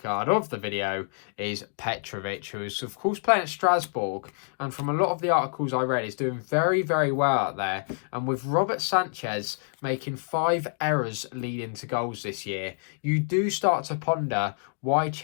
of the video is Petrovic, who is of course playing at Strasbourg, and from a lot of the articles I read, is doing very, very well out there. And with Robert Sanchez making 5 errors leading to goals this year, you do start to ponder why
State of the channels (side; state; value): right; silent; digital silence